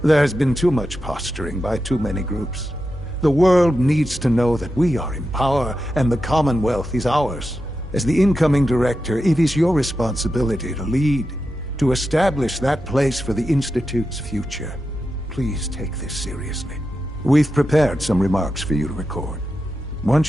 There's been too much posturing by too many groups. The world needs to know that we are in power and the Commonwealth is ours. As the incoming director, it is your responsibility to lead, to establish that place for the Institute's future. Please take this seriously. We've prepared some remarks for you to record.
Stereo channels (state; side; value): normal; both; correlation 0.89